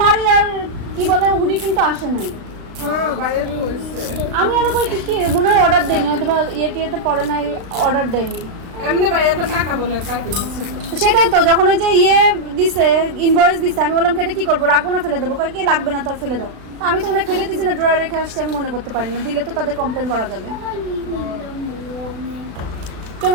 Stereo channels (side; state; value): left; late; 36 ms